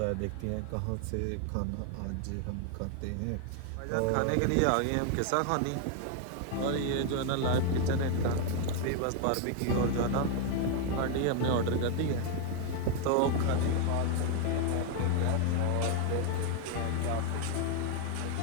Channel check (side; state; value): both; different; correlation 0.00